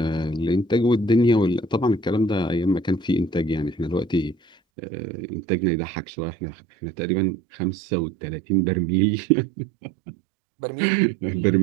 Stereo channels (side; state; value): left; drops out; at 4.5 s